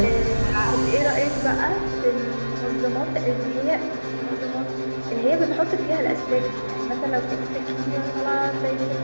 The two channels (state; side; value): inverted; both; correlation -1.00